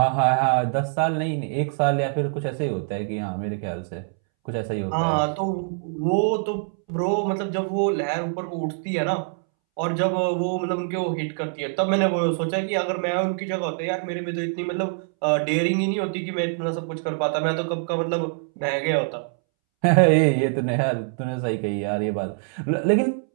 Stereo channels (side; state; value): left; silent; 62 dB below the other